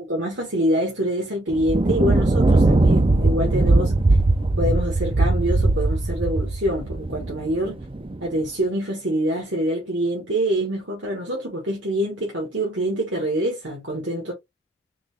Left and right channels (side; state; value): both; normal; correlation 0.71